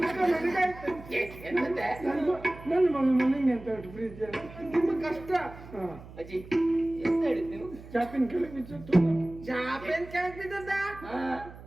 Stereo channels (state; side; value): noise; right; hum, 17 dB below the sound